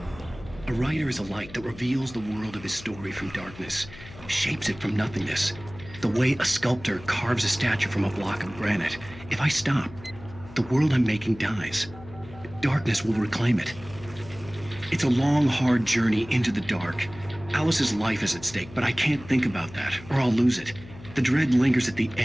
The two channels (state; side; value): noise; left; hum, 17 dB below the sound